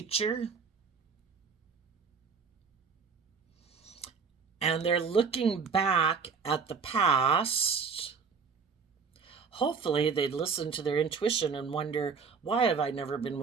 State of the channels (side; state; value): left; quieter; 5.7 dB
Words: and they're looking back at the past. Hopefully they'd listen to their intuition and wonder, why have I never been